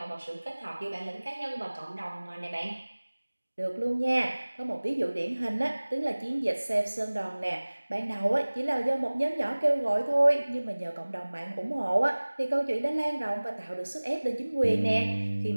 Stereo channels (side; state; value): both; inverted; correlation -1.00